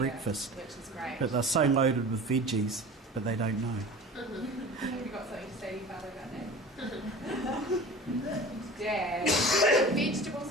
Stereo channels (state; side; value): normal; both; correlation 0.38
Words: Which is great. But they're so loaded with veggies, but they don't know. Have you got something to say to your father about that? Dad, vegetables